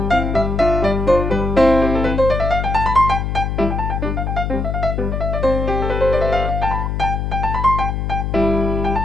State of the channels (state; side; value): noise; left; hum, 2 dB below the sound